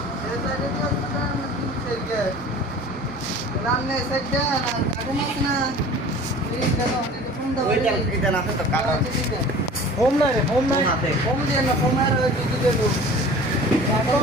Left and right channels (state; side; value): normal; both; correlation 0.42